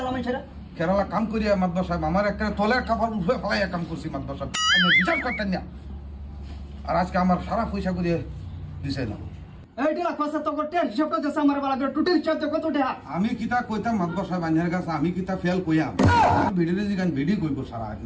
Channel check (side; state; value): both; identical; correlation 1.00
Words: ছেড়া কেরালা কাম করিয়া মাতবার সাহেব আমার একটা তলের কাপড় উঠে ফেলাই কাম করছি মাতবার সাহেব আমি বিচার করতেন না আর আজকে আমার সারা পয়সা করিয়ে দিছে না এইটা কথা তো করতে হিসাব করতে আমার বালা টোটাল চার্জ কত টাকা আমি কিতা কইতাম মাতবার সাহেব আইনের কাছে আমি কিতা ফেল কইয়াম ভিডিও দিগান ভিডিও কইব সারা